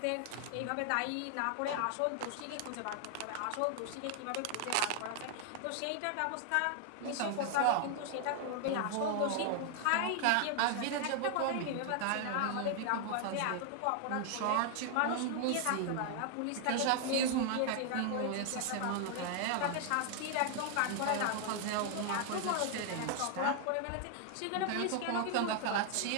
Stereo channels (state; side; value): different; both; correlation 0.00